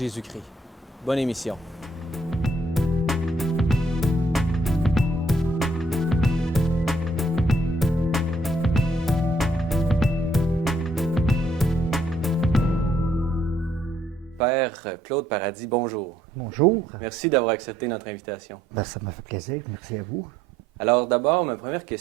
Bonne émission. Père Claude Paradis, bonjour. Bonjour. Merci d'avoir accepté notre invitation. Ça m'a fait plaisir. Merci à vous. Alors d'abord, ma première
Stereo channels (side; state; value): both; normal; correlation 0.68